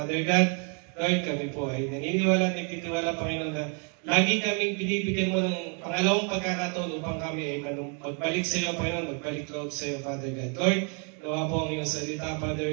God. Lord, kami po ay naniniwala at nagtitiwala, Panginoon, na lagi kaming binibigyan mo ng pangalawang pagkakataon upang kami ay magbalik sa iyo, Panginoon, magbalik loob sa iyo, Father God. Lord, nawa po ang iyong salita,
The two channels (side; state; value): left; quieter; 38.3 dB